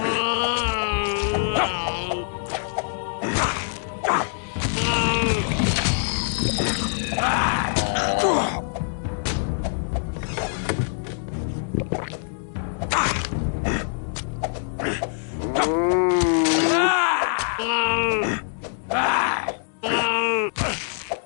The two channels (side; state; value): right; silent; digital silence